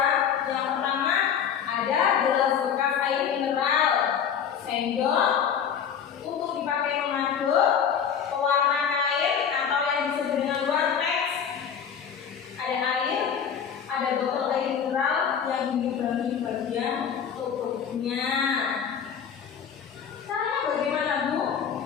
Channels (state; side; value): quieter; right; 7.8 dB